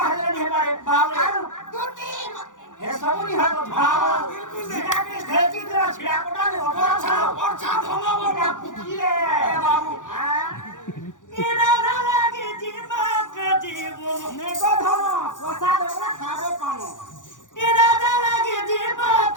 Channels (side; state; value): right; late; 0.87 ms